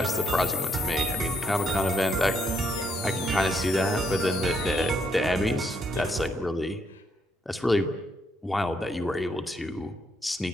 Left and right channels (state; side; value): normal; both; correlation 0.74